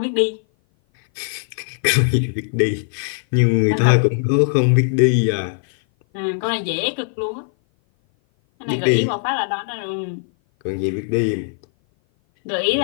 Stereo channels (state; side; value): silent; right; 57 dB below the other